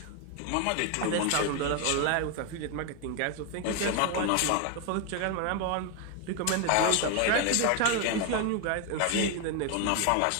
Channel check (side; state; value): both; different; correlation 0.01